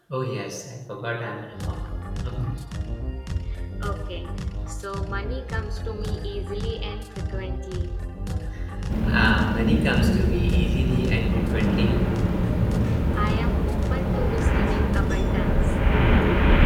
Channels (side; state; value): both; identical; correlation 1.00